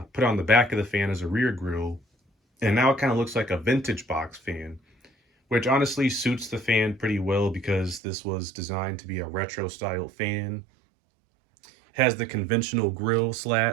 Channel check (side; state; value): left; drops out; at 8.0 s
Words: the back of the fan as a rear grill, and now it kind of looks like a vintage box fan, which honestly suits the fan pretty well because this was designed to be a retro style fan. It has the conventional grill